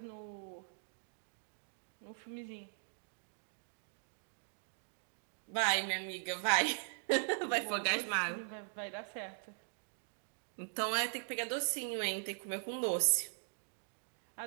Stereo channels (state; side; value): silent; left; digital silence